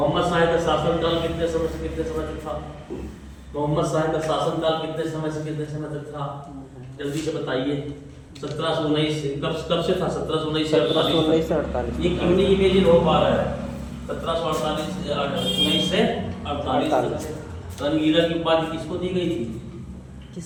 शाह का शासनकाल कितने समय से कितने समय तक था? मोहम्मद शाह का शासनकाल कितने समय से कितने समय तक था? जल्दी से बताइए। 1719 से कब से था? 1719 से 1748। ये क्यों नहीं इमेजिन हो पा रहा है? 1748 से 48 तक। रंगीला की उपाधि किसको दी गई थी?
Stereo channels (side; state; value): both; identical; correlation 1.00